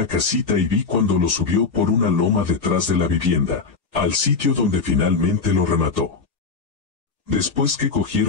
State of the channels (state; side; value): quieter; right; 4.7 dB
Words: casita y vi cuando lo subió por una loma detrás de la vivienda, al sitio donde finalmente lo remató. Después que